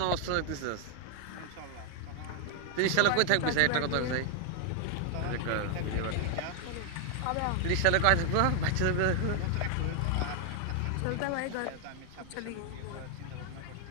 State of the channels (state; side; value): different; both; correlation 0.00